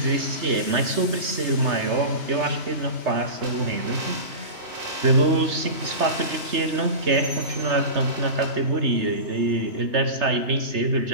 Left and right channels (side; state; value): left; late; 3.3 ms